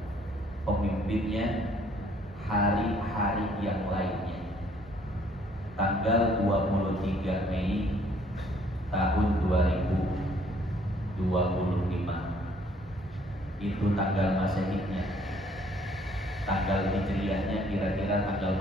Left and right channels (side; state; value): both; normal; correlation 0.62